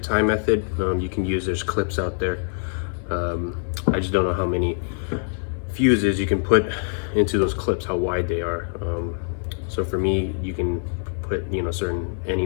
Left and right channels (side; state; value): right; silent; 57 dB below the other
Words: tie method. You can use, there's clips out there. I just don't know how many fuses you can put into those clips, how wide they are. So for me, you can put any